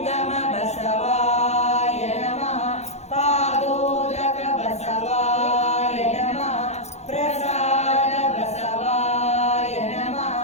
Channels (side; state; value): right; late; 0.32 ms